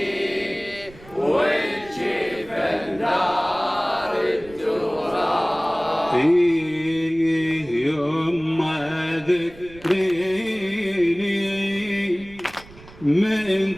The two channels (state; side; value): noise; right; rumble, 21 dB below the sound